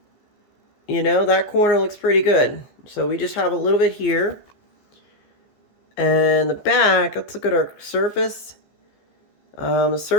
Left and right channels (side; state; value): right; late; 14 ms